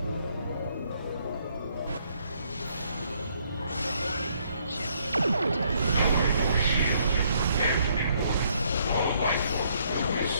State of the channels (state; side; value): inverted; both; correlation -0.69